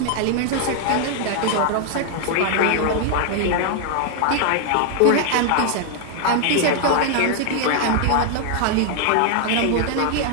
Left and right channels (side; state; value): both; different; correlation 0.00